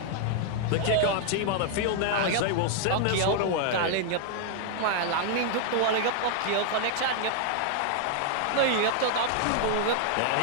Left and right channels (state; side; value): different; both; correlation 0.00